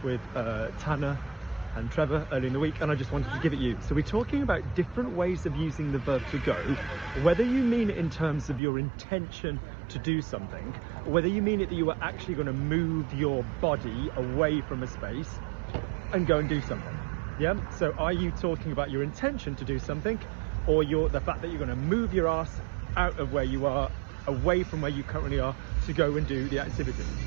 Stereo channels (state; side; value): drops out; left; at 8.6 s